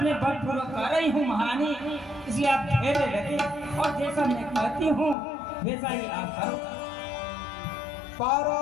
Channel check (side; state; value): right; drops out; at 5.2 s